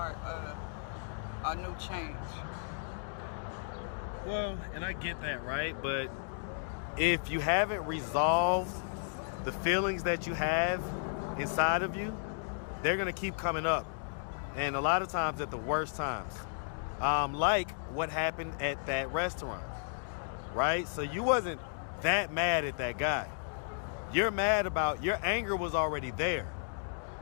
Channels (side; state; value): right; silent; digital silence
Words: a new change. Well, and I get that, right? But if you haven't resolved the feelings that you have inside of you, they're going to keep coming up. And a lot of times at the worst times. Like what happened at that restaurant, right? So you wasn't that mad at that guy. You're mad about, your anger was already there.